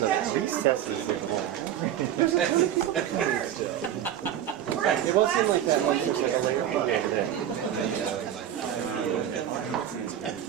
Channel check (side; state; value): left; quieter; 10.6 dB